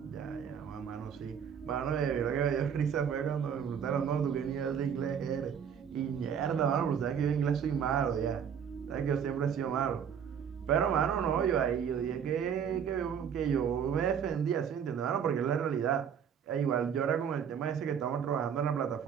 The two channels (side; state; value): left; quieter; 7.9 dB